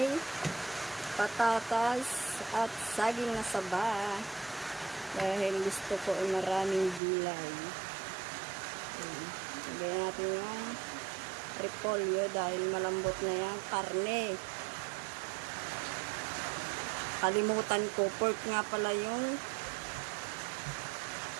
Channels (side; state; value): left; drops out; at 7.0 s